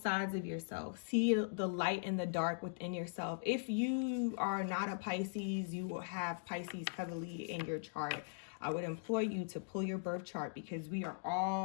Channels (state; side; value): silent; right; digital silence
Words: sides of yourself. See the light and the dark within yourself. If you are not a Pisces, you will have Pisces heavily in your chart. I would implore you to pull your birth chart, because we are